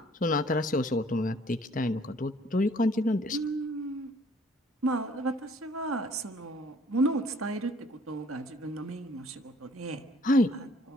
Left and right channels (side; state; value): both; normal; correlation 0.58